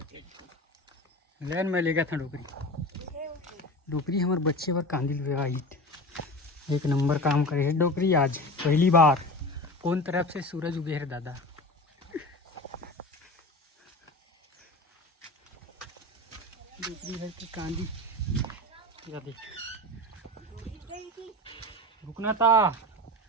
लेन में ले गया था डुकरी डुकरी हमारे बच्चे पर कांदिल हुआ हिट एक नंबर काम करे है डोकरी आज पहली बार कौन तरफ से सूरज उगे है दादा डोकरी है कि कांदी या देख रुकना था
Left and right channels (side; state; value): both; normal; correlation 0.31